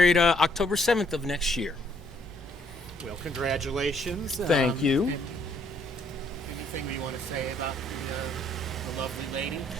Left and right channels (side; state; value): both; normal; correlation 0.67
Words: October 7th of next year. Well, congratulations. Thank you. Anything we want to say about the lovely lady?